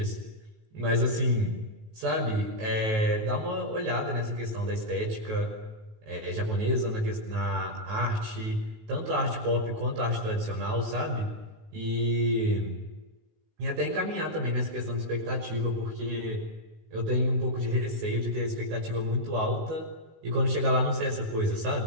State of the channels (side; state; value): left; late; 19 ms